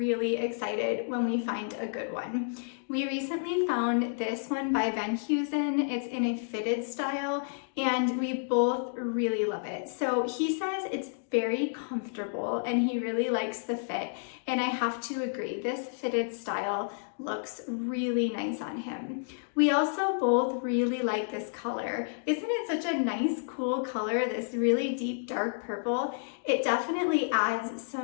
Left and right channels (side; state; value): right; silent; digital silence